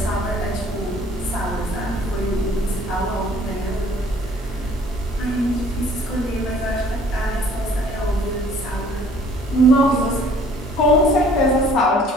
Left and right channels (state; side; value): normal; both; correlation 0.56